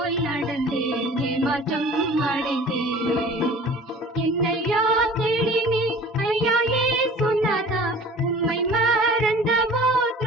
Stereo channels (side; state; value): both; normal; correlation 0.45